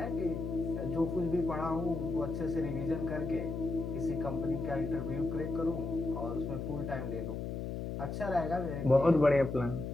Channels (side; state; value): left; noise; hum, 4 dB below the sound